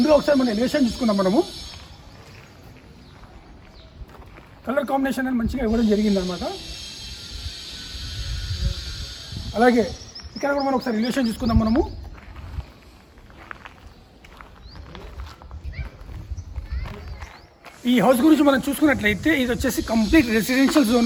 ఒకసారి మనం ఎలివేషన్ చూసుకున్నాం. మనము కలర్ కాంబినేషన్ అని మంచిగా ఇవ్వడం జరిగిందనమాట. అలాగే ఇక్కడ కూడా మనం ఒకసారి ఎలివేషన్ చూసుకుందాం. మనము ఈ హౌస్ గురించి మనం చూసుకున్నట్లయితే ఇది వచ్చేసి కంప్లీట్ రెసిడెన్షియల్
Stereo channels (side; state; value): both; identical; correlation 1.00